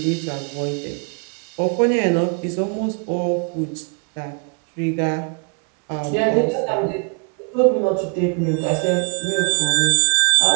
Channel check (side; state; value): left; quieter; 35.0 dB